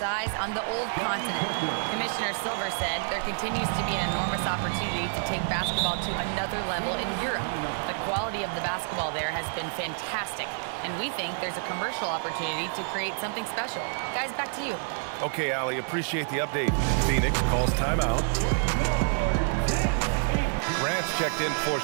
eyes on the old continent. Commissioner Silver said there continues to be an enormous opportunity to take basketball to another level in Europe. The quality of the basketball there has been fantastic, and we think there's a commercial opportunity to create something special. Guys, back to you. Okay, Allie, appreciate the update. Phoenix calls timeout. Grant's checked in for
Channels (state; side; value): silent; left; digital silence